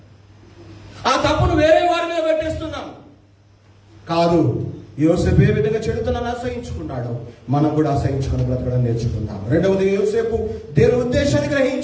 ఆ తప్పును వేరే వారి మీద పెట్టేస్తున్నాం. కాదు, యోసేపు ఏ విధంగా చెడుతనాన్ని అసహించుకున్నాడో మనం కూడా అసహించుకుని బ్రతకడం నేర్చుకుందాం. రెండవది, యోసేపు దేవుని ఉద్దేశాన్ని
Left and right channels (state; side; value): identical; both; correlation 1.00